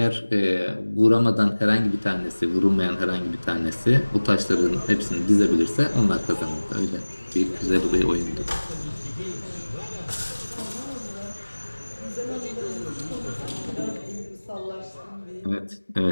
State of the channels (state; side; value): inverted; both; correlation -1.00